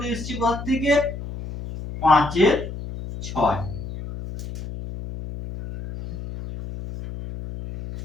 এসছে কোথা থেকে? 5-এর 6।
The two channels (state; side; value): noise; left; hum, 10 dB below the sound